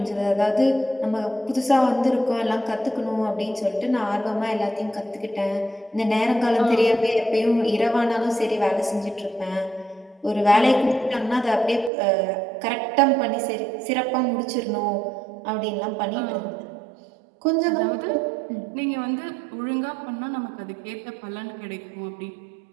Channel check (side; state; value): left; drops out; at 11.9 s